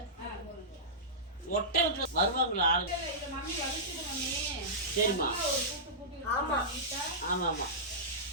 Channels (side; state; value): both; normal; correlation -0.16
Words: ஒட்டை வருவாங்களா ஆளு? சரிம்மா. ஆமாம் ஆமாம்